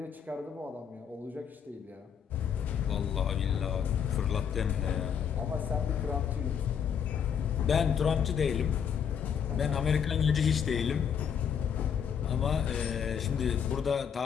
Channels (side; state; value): right; quieter; 7.8 dB